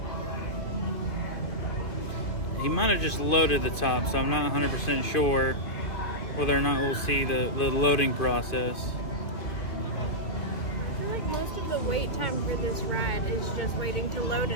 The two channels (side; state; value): right; late; 2.5 ms